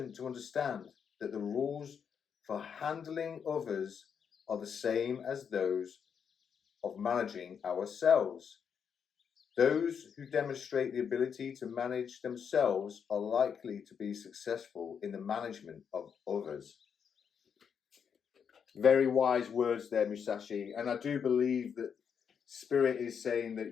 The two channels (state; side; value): quieter; right; 7.1 dB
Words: to understand that the rules for handling others are the same as those of managing ourselves. Those who demonstrate the ability to manage themselves are likely to be successful in the management of others. Very wise words there, Musashi. And I do believe that Spirit is saying